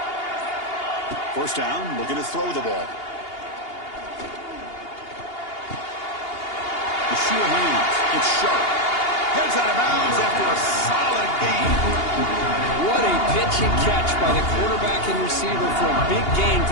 First down, looking to throw the ball. The sure hands. It's sharp. Heads out of bounds after a solid gain. What a pitch and catch by the quarterback and receiver for a big gain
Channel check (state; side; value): late; right; 2.8 ms